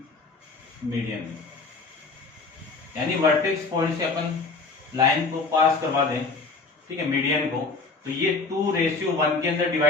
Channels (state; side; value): quieter; right; 4.1 dB